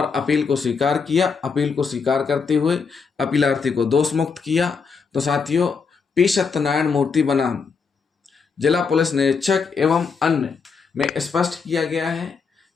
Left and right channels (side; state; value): right; quieter; 5.3 dB